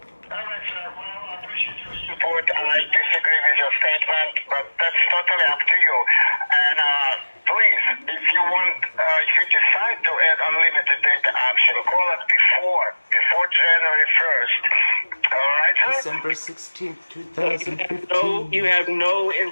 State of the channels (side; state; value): both; inverted; correlation -1.00